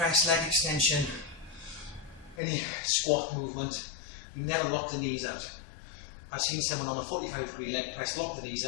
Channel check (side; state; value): right; drops out; at 2.4 s